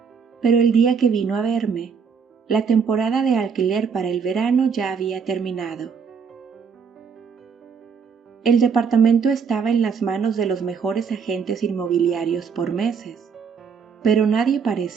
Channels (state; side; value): quieter; left; 6.2 dB